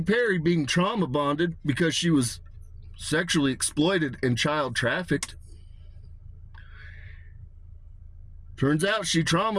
Perry, being trauma bonded because she was sexually exploited and child trafficked, turns out she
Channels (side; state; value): both; identical; correlation 1.00